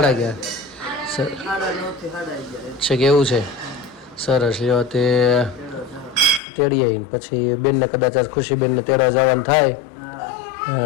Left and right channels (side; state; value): right; drops out; at 6.4 s